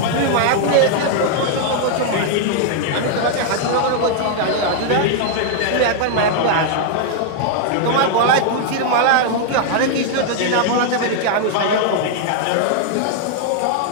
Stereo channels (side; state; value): both; different; correlation 0.00